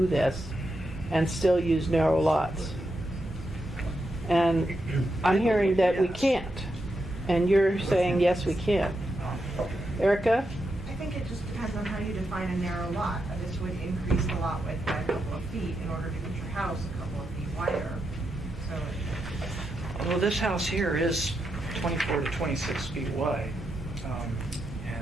this and still use narrow lots? And I'm hearing that we can't, and you're saying, yes, we can. Erica? I think it just depends on how you define a narrow lot. This would increase the lot width by a couple of feet in order to get your house a couple of feet wider. So Well, this house here is 24 to 26 feet wide.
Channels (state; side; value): normal; both; correlation 0.85